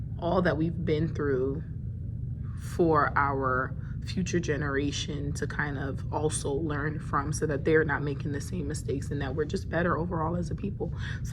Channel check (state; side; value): identical; both; correlation 1.00